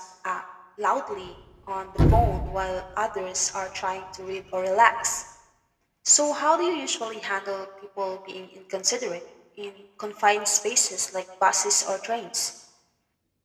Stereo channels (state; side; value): identical; both; correlation 1.00